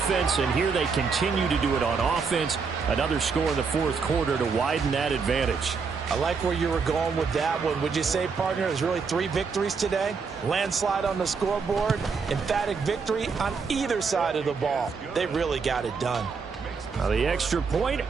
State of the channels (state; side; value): quieter; left; 5.3 dB